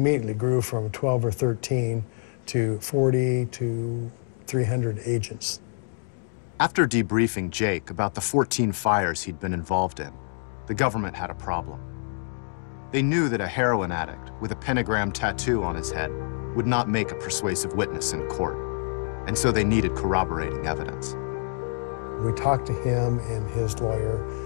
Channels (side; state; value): right; silent; 60 dB below the other